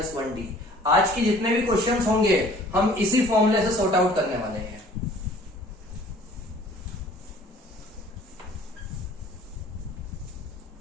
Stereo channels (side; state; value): both; normal; correlation 0.52